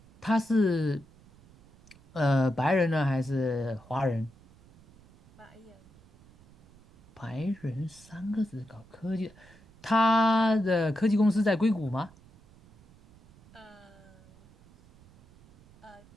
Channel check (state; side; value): noise; right; rumble, 26 dB below the sound